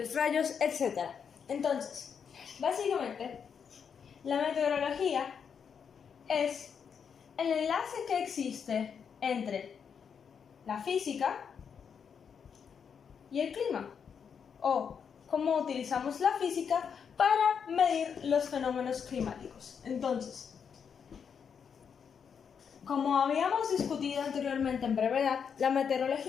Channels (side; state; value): right; quieter; 6.9 dB